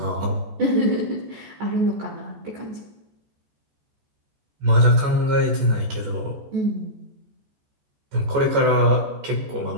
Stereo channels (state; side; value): late; left; 14 ms